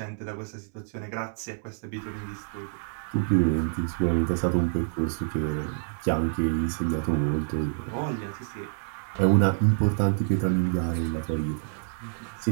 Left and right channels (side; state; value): left; silent; 60 dB below the other